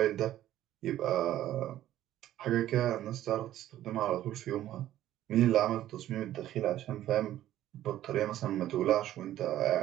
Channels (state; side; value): quieter; left; 13.1 dB